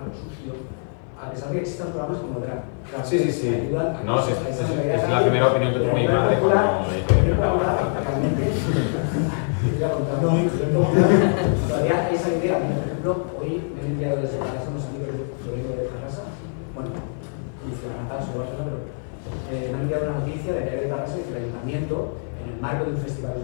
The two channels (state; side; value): silent; right; 56 dB below the other